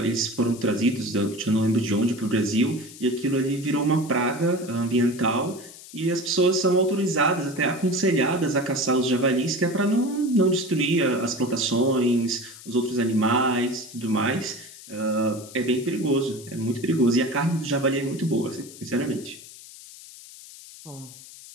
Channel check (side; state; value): left; noise; hiss, 17 dB below the sound